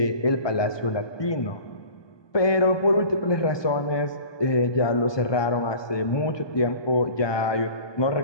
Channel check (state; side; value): late; right; 1.2 ms